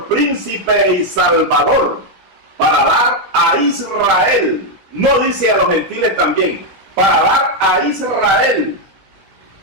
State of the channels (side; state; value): left; late; 17 ms